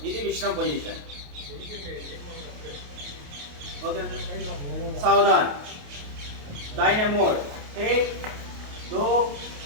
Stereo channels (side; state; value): left; late; 28 ms